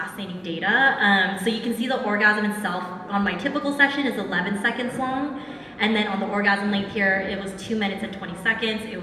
data. So you can see the orgasm itself on my typical session is 11 seconds long. And then on the orgasm length here, it was 2 minutes and 20 seconds. It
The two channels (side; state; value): both; identical; correlation 1.00